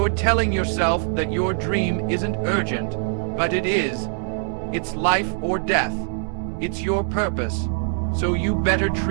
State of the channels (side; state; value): left; silent; 57 dB below the other